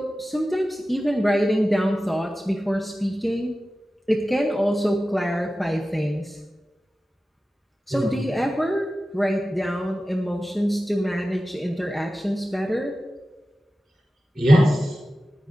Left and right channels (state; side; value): normal; both; correlation 0.94